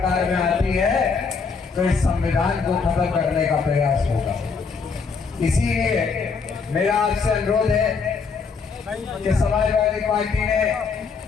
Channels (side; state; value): right; quieter; 5.1 dB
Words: में आती है तो इस संविधान को खत्म करने का प्रयास होगा। इसीलिए मेरा आपसे अनुरोध है कि समाजवादी पार्टी ने